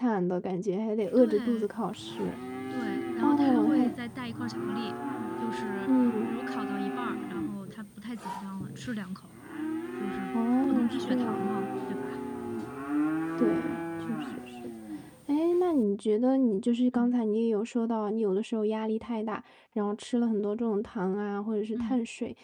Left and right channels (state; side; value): identical; both; correlation 1.00